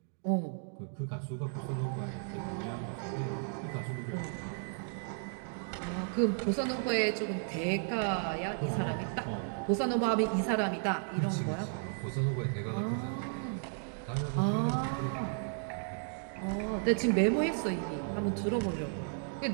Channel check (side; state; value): left; silent; 55 dB below the other